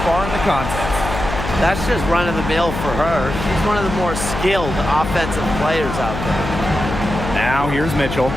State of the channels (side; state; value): left; noise; hum, 6 dB below the sound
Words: far in the contest. That's just run-of-the-mill for her. She's one of the more skilled offensive players out there. Now here's Mitchell.